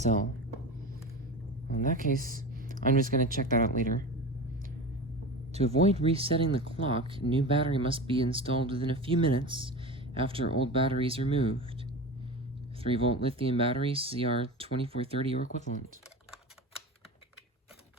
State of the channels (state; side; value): normal; both; correlation 0.29